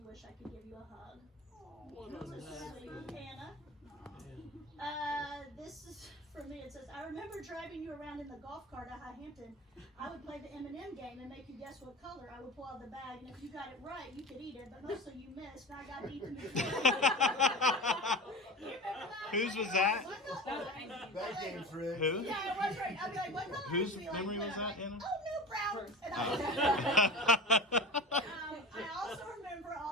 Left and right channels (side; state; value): both; normal; correlation 0.32